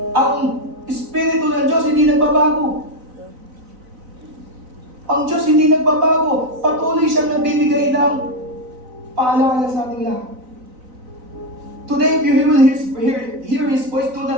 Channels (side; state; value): left; late; 4.0 ms